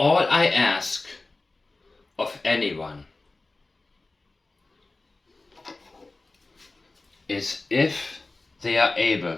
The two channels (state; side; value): quieter; right; 3.3 dB